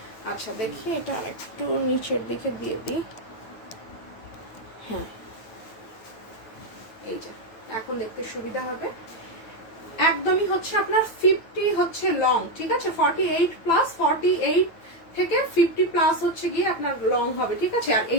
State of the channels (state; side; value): late; right; 9.1 ms